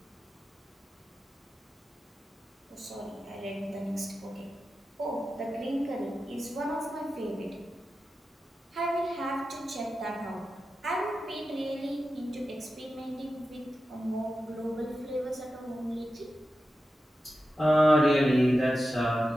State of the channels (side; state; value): both; normal; correlation 0.92